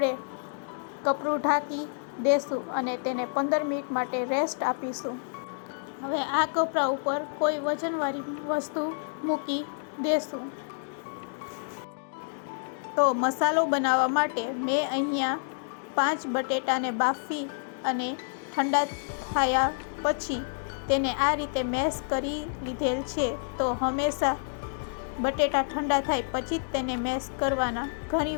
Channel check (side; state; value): right; silent; digital silence